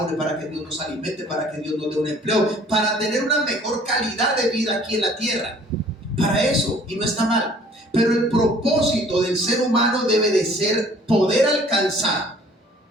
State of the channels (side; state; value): both; normal; correlation 0.54